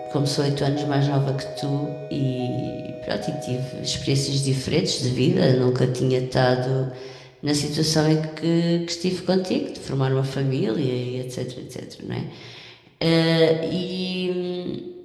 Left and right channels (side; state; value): both; identical; correlation 1.00